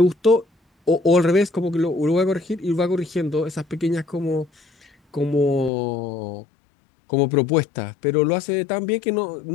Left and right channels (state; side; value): drops out; right; at 5.7 s